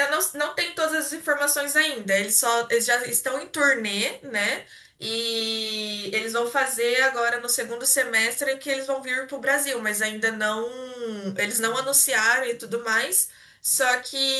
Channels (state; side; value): identical; both; correlation 1.00